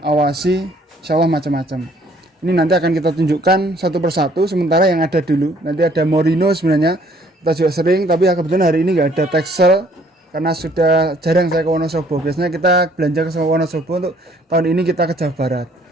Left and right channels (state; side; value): normal; both; correlation 0.61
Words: awasi, insyaallah macam-macam. Ini nanti akan kita tunjukkan satu persatu, sementara yang ada dulu. Nanti ada Morino sebenarnya, kita juga sering, tapi kebetulan hari ini nggak ada Texel, karena sudah jarang saya ke Wonosobo. Biasanya kita belanja ke Wonosobo, untuk tahun ini kita ke Jawa Barat.